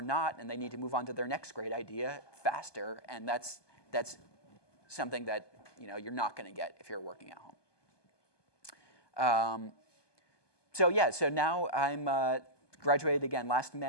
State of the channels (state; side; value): late; right; 1.2 ms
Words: not, and they need to move on to their next great idea faster. And that's something that you're not going to get if you're working at home. So now I'm graduated again last